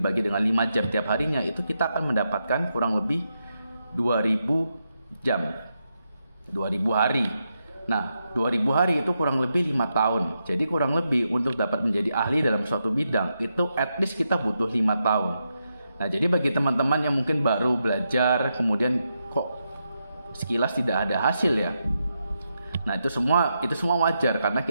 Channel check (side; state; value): both; inverted; correlation -0.85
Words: dengan 5 jam tiap harinya, itu kita akan mendapatkan kurang lebih 2.000 jam. 2.000 hari. Nah, 2.000 hari itu kurang lebih 5 tahun. Jadi kurang lebih untuk dapat menjadi ahli dalam suatu bidang, itu at least kita butuh 5 tahun. Nah, jadi bagi teman-teman yang mungkin baru belajar, kemudian kok sekilas tidak ada hasil ya. Nah, itu semua wajar karena